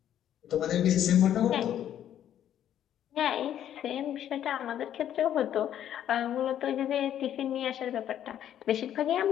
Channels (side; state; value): right; quieter; 10.7 dB